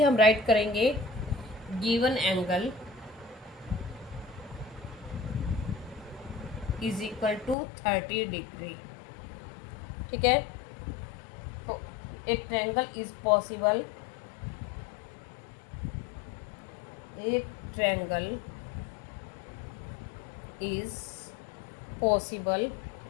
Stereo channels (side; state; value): right; drops out; at 7.6 s